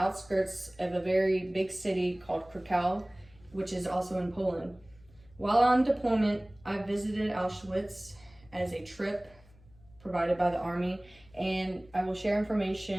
of a very big city called Krakow, which is also in Poland. While on deployment, I visited Auschwitz as a trip provided by the Army, and I will share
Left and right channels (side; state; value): left; noise; hum, 27 dB below the sound